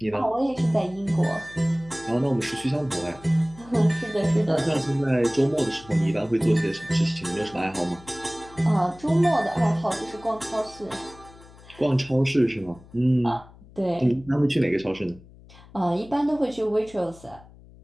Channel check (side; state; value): left; noise; hum, 22 dB below the sound